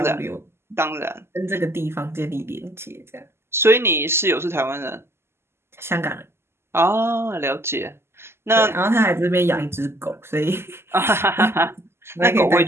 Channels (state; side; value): late; left; 0.12 ms